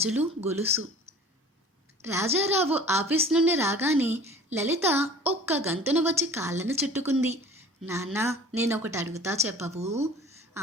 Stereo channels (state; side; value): normal; both; correlation 0.45